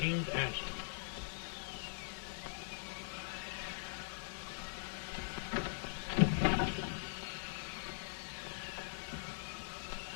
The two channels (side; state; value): right; silent; digital silence